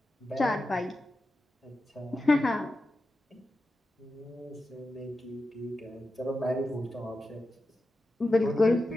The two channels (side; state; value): both; normal; correlation 0.91